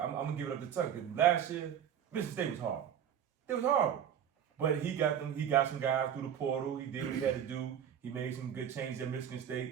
gonna give it up to Tucker. Cause last year, Michigan State was horrible. It was horrible. But he got some guys through the portal. He did what he had to do. He made some good changes at Michigan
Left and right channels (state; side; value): quieter; left; 9.2 dB